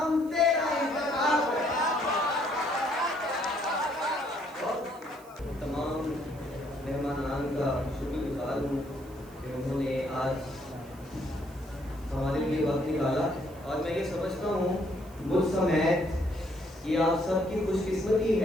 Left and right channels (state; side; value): noise; right; hiss, 25 dB below the sound